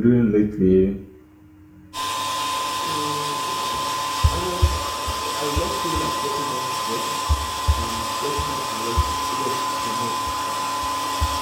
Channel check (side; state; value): both; identical; correlation 1.00